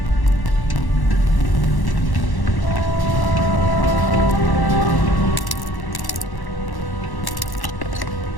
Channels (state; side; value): late; right; 1.1 ms